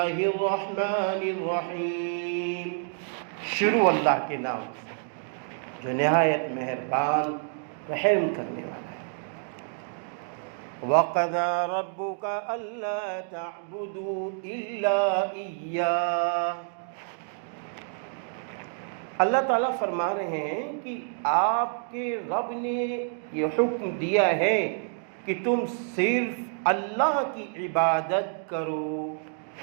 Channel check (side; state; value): left; silent; 59 dB below the other